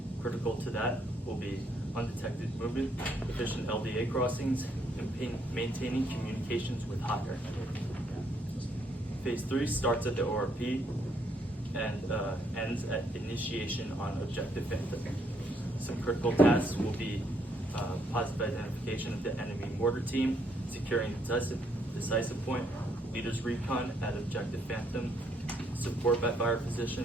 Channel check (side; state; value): both; normal; correlation 0.72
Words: Critical to that will be undetected movement, efficient LDA crossings, and maintaining communications with higher. Phase 3 starts at the ORP and ends at initiation on Objective Phantom. Some critical tasks will be positive identification of the enemy mortar team, securing decisive point, leaders recon at Objective Phantom, support by fire